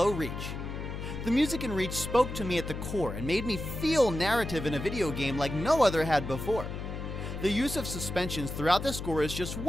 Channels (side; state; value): left; noise; hum, 6 dB below the sound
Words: Reach. The music in Reach spoke to me at the core and made me feel narrative in a video game like no other had before. The use of suspensions throughout the score is just